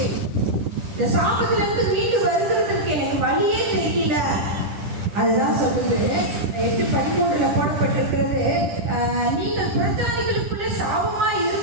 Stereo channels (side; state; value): left; late; 10 ms